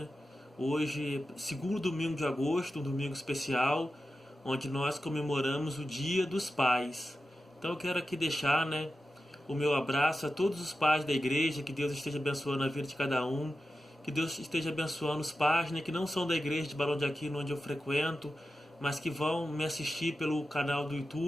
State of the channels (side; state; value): both; normal; correlation 0.92